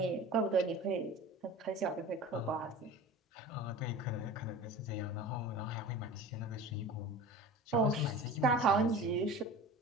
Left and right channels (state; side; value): normal; both; correlation 0.37